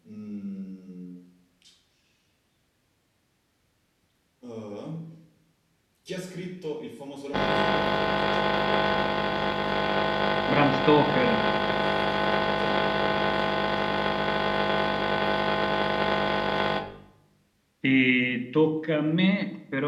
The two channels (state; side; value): identical; both; correlation 1.00